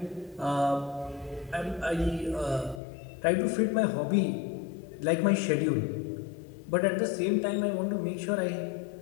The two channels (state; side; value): drops out; right; at 2.8 s